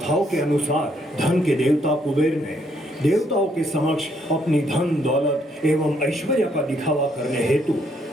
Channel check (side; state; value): both; normal; correlation 0.71